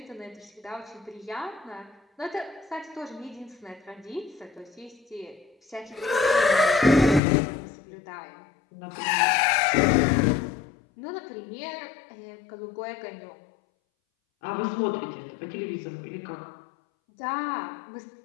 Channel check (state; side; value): drops out; right; at 7.2 s